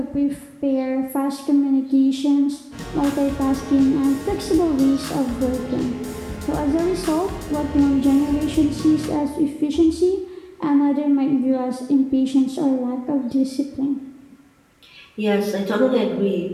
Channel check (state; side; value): identical; both; correlation 1.00